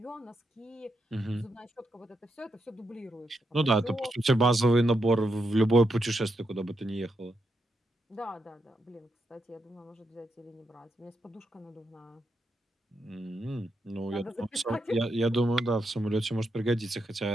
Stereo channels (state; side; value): normal; both; correlation 0.83